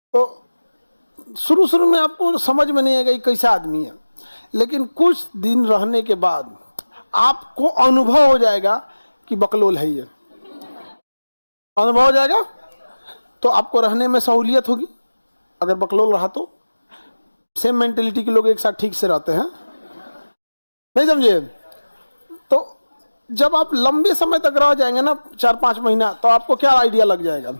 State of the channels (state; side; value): inverted; both; correlation -1.00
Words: तो शुरू शुरू में आपको समझ में नहीं आएगा ये कैसा आदमी है, लेकिन कुछ दिन रहने के बाद आपको अनुभव हो जाएगा कि बकलोल है ये। अनुभव हो जाएगा तो आपको रहने में सहूलियत होगी। अगर बकलोल रहा तो सेम मेंटेलिटी के लोग एक साथ ठीक से रहते हैं। नहीं समझे? तो जब आप लंबे समय तक रह जाएंगे ना, 4-5 महीना, तो आपको क्या आइडिया लग जाएगा,